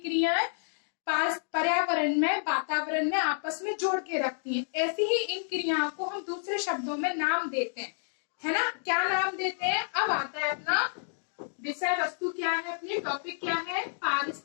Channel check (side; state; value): right; silent; digital silence